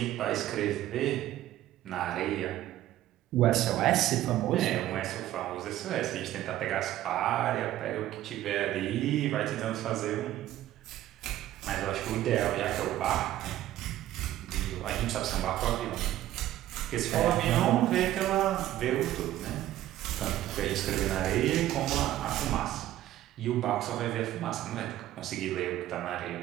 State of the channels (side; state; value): left; quieter; 13.8 dB